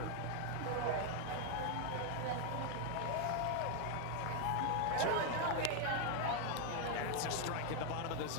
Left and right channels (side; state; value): both; different; correlation 0.00